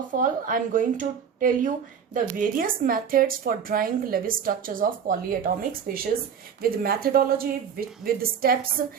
all, I'm going to tell you the various methods for drawing Lewis structures of polyatomic species with methodology, with the steps.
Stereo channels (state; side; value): quieter; left; 7.4 dB